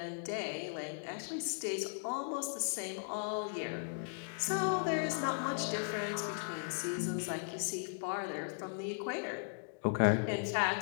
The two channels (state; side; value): silent; right; digital silence